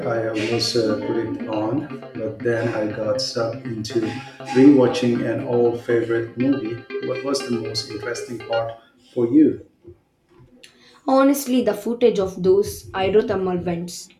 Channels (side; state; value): both; identical; correlation 1.00